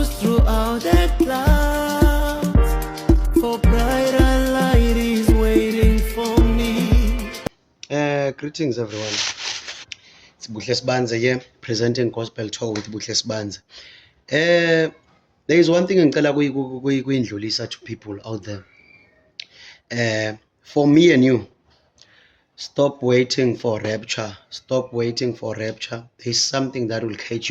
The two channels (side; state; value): both; identical; correlation 1.00